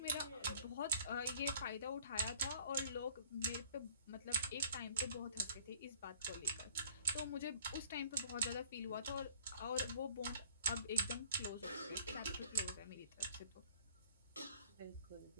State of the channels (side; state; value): both; inverted; correlation -0.53